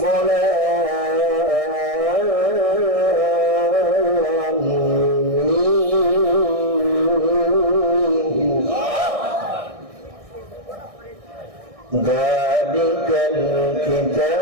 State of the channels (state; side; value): late; left; 1.6 ms